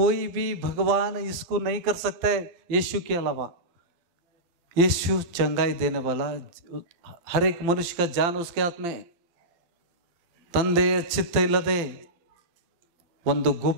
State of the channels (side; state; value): left; late; 12 ms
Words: भी भगवान इसको नहीं कर सकता है यीशु के अलावा। यीशु चंगाई देने वाला, हर एक मनुष्य का जान उसके हाथ में। ತಂದೆಯ ಚಿತ್ತ ಇಲ್ಲದೆ ಒಂದು